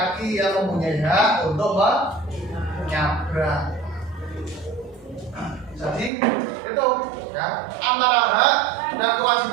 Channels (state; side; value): drops out; left; at 6.1 s